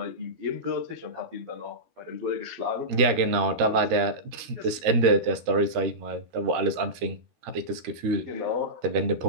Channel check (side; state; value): left; late; 13 ms